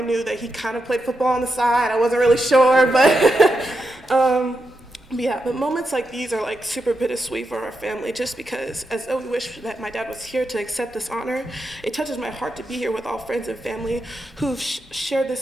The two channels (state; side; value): normal; both; correlation 0.86